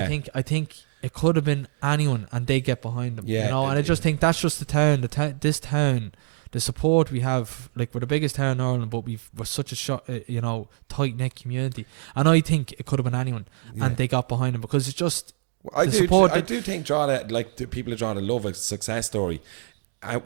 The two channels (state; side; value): silent; left; digital silence